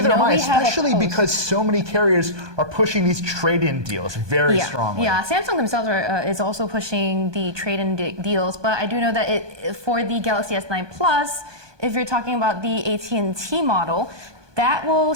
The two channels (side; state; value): left; late; 1.2 ms